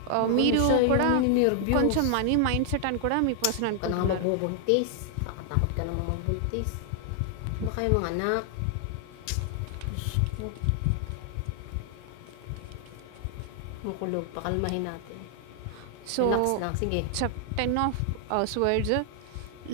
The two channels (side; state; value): both; different; correlation 0.00